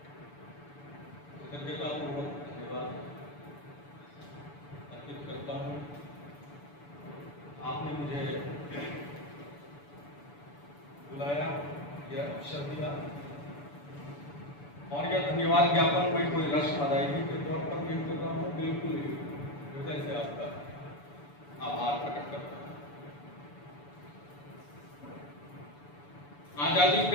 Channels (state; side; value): late; right; 6.9 ms